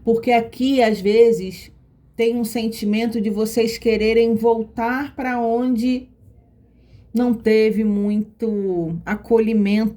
Porque aqui, às vezes, tem um sentimento de vocês quererem voltar para onde não teve muito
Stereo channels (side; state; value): both; identical; correlation 1.00